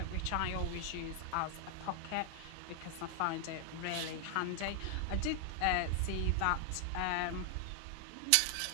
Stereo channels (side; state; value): both; different; correlation 0.00